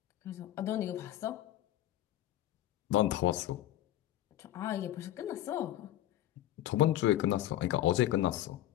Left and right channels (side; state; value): right; quieter; 13.7 dB